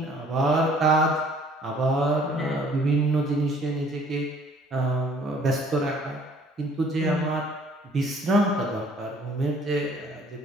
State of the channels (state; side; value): normal; both; correlation 0.57